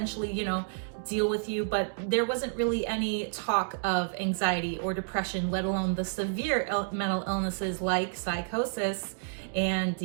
deal with you, but there wasn't really any talk of anxiety or depression, let alone the severe mental illnesses like psychosis and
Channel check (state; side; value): silent; left; digital silence